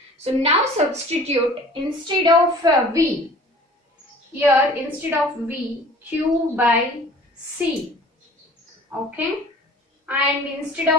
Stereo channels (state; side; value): normal; both; correlation 0.47